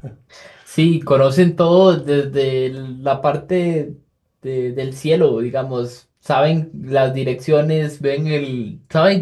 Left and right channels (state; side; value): identical; both; correlation 1.00